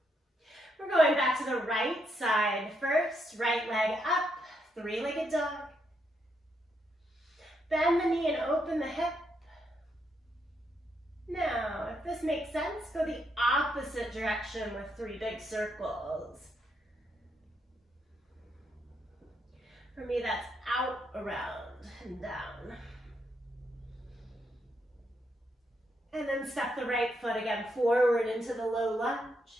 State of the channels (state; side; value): normal; both; correlation 0.78